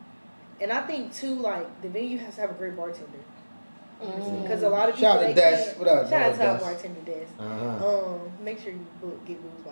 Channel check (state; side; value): inverted; both; correlation -1.00